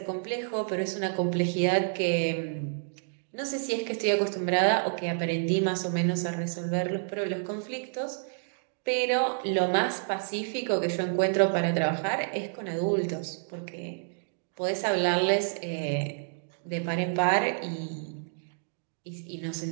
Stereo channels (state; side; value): silent; left; digital silence